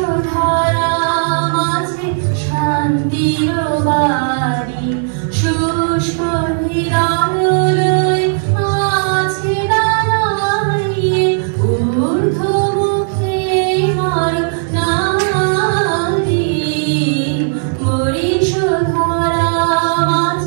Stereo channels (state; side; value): silent; left; digital silence